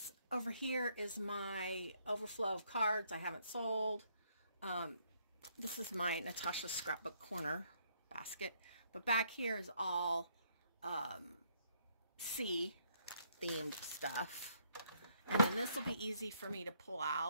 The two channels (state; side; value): inverted; both; correlation -0.70